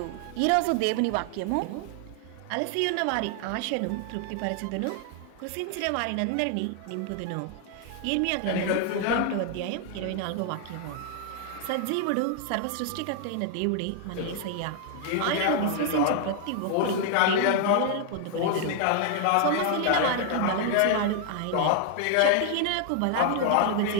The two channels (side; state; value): both; different; correlation 0.00